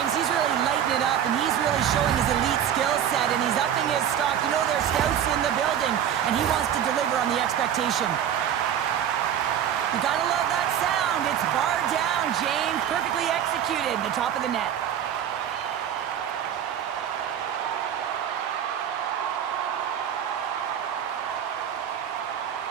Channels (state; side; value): quieter; left; 9.6 dB